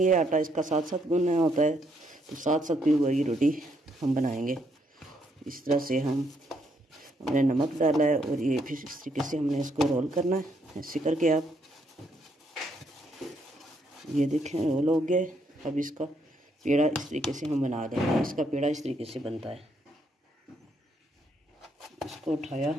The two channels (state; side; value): normal; both; correlation 0.74